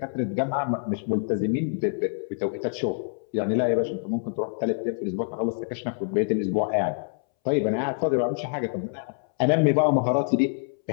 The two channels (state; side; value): silent; right; 61 dB below the other